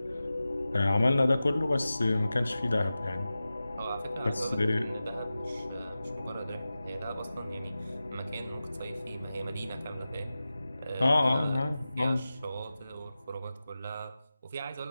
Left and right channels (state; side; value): inverted; both; correlation -0.94